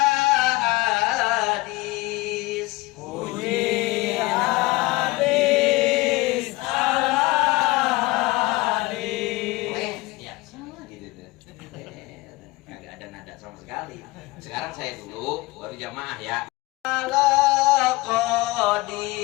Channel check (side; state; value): right; quieter; 21.2 dB